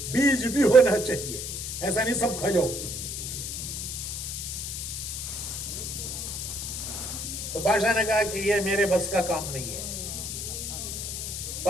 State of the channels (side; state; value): left; noise; hiss, 5 dB below the sound